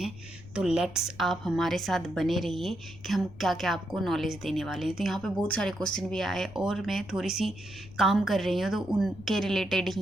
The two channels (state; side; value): noise; left; rumble, 18 dB below the sound